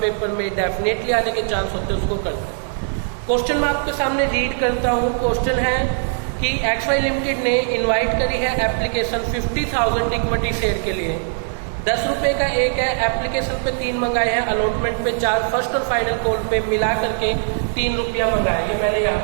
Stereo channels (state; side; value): silent; left; 65 dB below the other